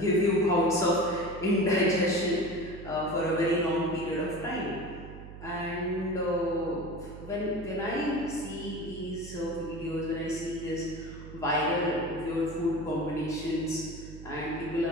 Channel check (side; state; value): right; noise; hum, 13 dB below the sound